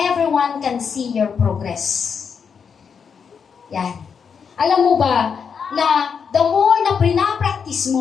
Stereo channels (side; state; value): right; quieter; 6.5 dB